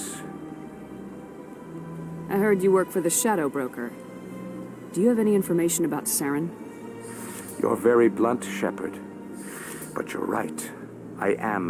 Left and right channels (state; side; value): identical; both; correlation 1.00